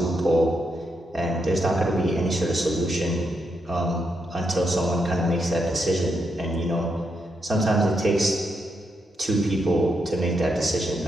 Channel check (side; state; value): both; normal; correlation 0.81